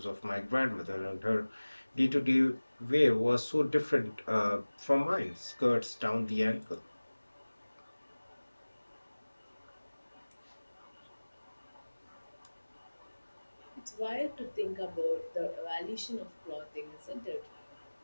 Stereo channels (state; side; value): inverted; both; correlation -1.00